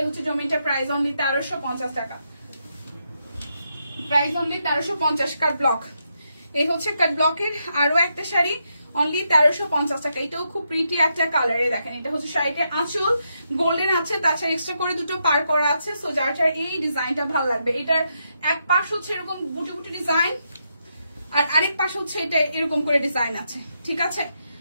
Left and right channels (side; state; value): both; inverted; correlation -0.82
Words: হচ্ছে জমিটা, প্রাইস অনলি 1350 টাকা, প্রাইস অনলি 1350। কাট ব্লক, এই হচ্ছে কাট ব্লকের আরো একটা শাড়ি, অনলি 1350 টাকা। এটাও খুব প্রিটি একটা কালারে, দেখেন এটা হচ্ছে শাড়িটার আঁচল, গোল্ডেন আছে, তাছাড়া এক্সট্রা করে দুটো পার করা আছে। সো যার যার এই ডিজাইনটা ভালো লাগবে, এটার এক পাশ হচ্ছে এরকম বুটি বুটি ডিজাইন আর আরেক পাশ হচ্ছে এটা এরকম করে ডিজাইন আছে, ঠিক আছে।